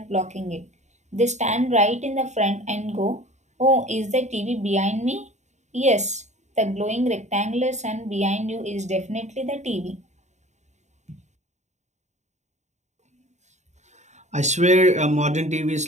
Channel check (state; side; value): late; left; 0.34 ms